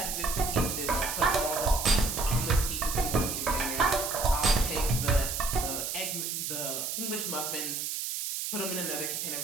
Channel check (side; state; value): right; noise; hiss, 3 dB below the sound